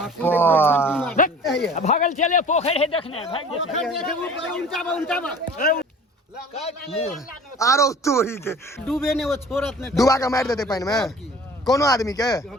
भागल चले पोखर है देखने भाग आरो तोरी के डूबे ने वो छोरत ने डुबा के मार देते पानी में कोनो आदमी के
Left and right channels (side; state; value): both; normal; correlation 0.45